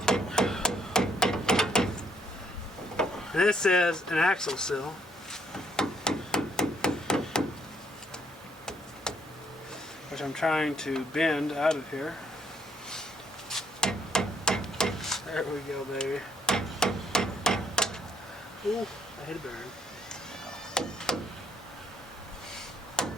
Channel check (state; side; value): normal; both; correlation 0.68